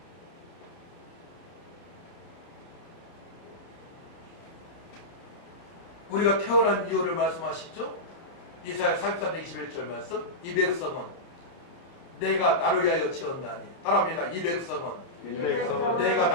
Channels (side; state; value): right; late; 29 ms